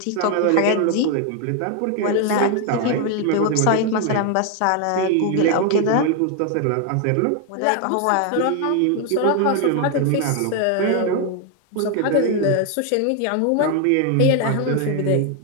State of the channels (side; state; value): both; different; correlation 0.01